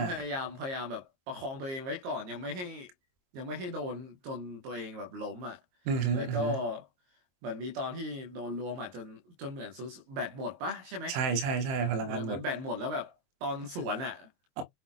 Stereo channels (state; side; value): late; left; 22 ms